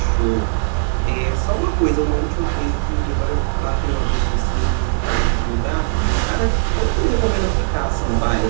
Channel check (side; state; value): left; silent; digital silence